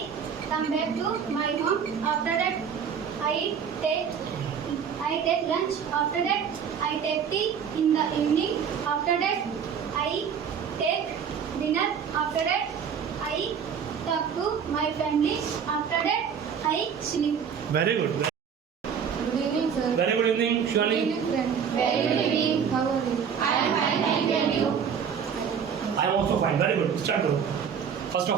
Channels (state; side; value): quieter; left; 7.3 dB